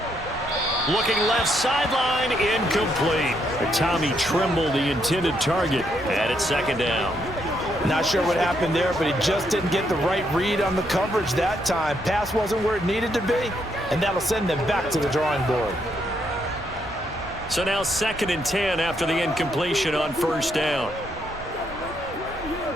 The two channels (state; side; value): normal; both; correlation 0.75